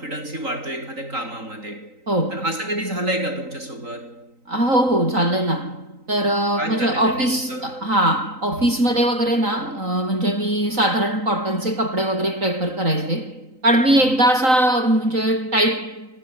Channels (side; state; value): left; late; 3.9 ms